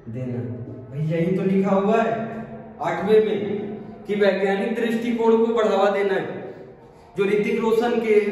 देना। भाई यही तो लिखा हुआ है 8वें में कि वैज्ञानिक दृष्टिकोण को बढ़ावा देना है। जो ऋतिक रोशन के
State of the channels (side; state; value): both; identical; correlation 1.00